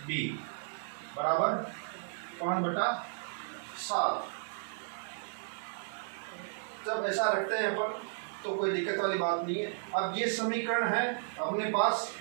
बी बराबर 5/7। जब ऐसा रखते हैं अपन तो कोई दिक्कत वाली बात नहीं है। अब ये समीकरण है अपने पास,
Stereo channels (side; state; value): left; silent; digital silence